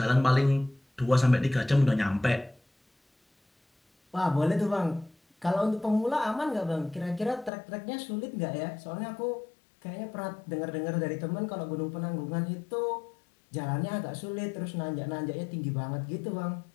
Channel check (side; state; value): right; drops out; at 7.5 s